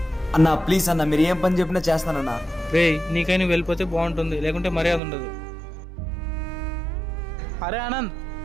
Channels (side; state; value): left; drops out; at 5.0 s